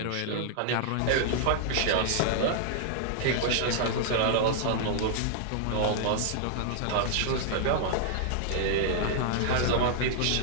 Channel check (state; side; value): different; both; correlation -0.01